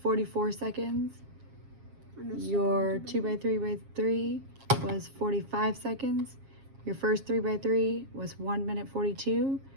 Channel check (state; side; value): late; left; 7.4 ms